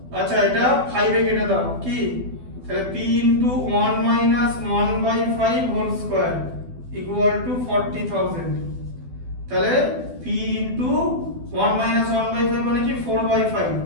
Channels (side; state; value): left; late; 12 ms